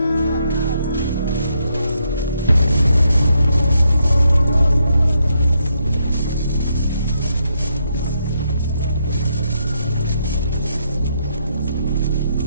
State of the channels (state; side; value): inverted; both; correlation -0.78